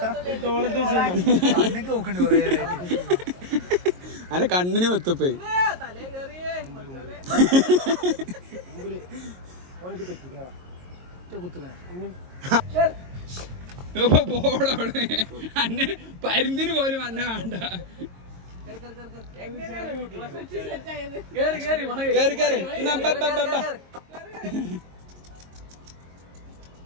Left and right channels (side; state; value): left; late; 22 ms